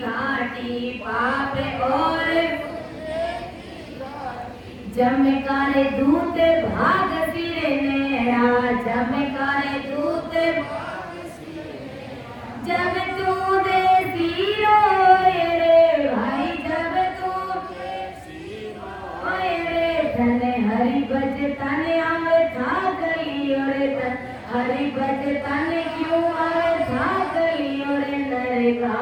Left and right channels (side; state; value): both; identical; correlation 1.00